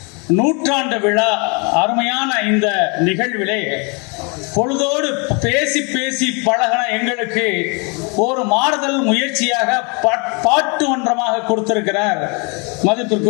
நூற்றாண்டு விழா அருமையான இந்த நிகழ்விலே பொழுதோடு பேசி பேசி பழகின எங்களுக்கு ஒரு மாறுதல் முயற்சியாக பாட்டு மன்றமாக கொடுத்திருக்கிறார்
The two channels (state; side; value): quieter; right; 32.7 dB